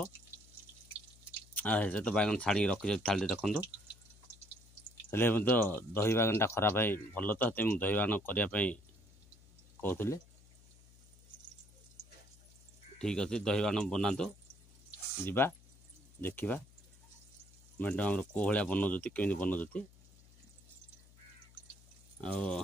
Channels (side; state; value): left; noise; hum, 25 dB below the sound